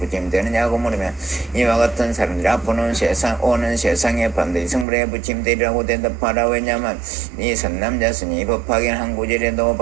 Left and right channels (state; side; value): drops out; left; at 4.9 s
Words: 물으면 이와 같은 사람들이 앞으로는 오는 세상에 반드시 성불에 부침되리라고 대답하라. 왜냐하면 이 선남자스니 법하긴 한 구절에도